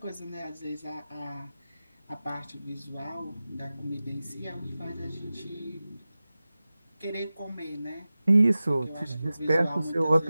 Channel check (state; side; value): inverted; both; correlation -0.96